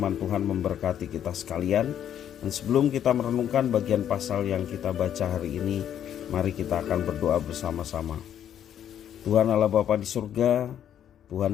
Tuhan memberkati kita sekalian. Dan sebelum kita merenungkan bagian pasal yang kita baca hari ini, mari kita akan berdoa bersama-sama. Tuhan Allah Bapa di surga,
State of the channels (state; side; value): quieter; right; 9.9 dB